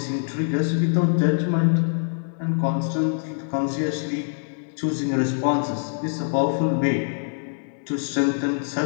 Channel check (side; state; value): right; silent; digital silence